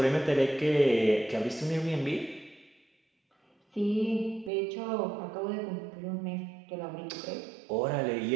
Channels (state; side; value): drops out; left; at 4.5 s